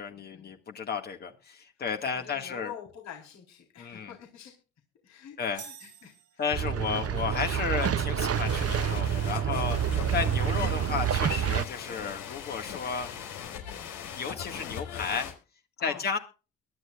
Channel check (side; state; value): both; normal; correlation 0.19